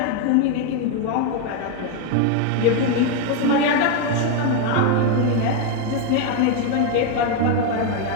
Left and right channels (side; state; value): both; different; correlation 0.01